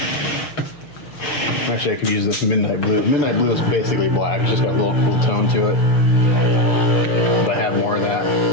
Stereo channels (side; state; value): right; late; 6.3 ms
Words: Actually, I could use this midnight blue. Midnight blue is basically black. It's just got a little cool tone to it. But I have more of that.